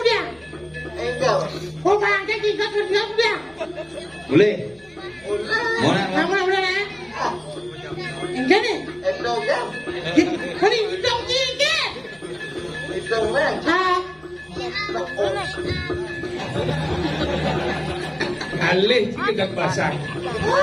Oh, bangga kita kerja udah. Boleh. Mau nak? Kamu udah lah. Kencan ni. Kali hitam ni kan. Ah. Alih kita basah.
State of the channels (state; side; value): noise; left; hum, 29 dB below the sound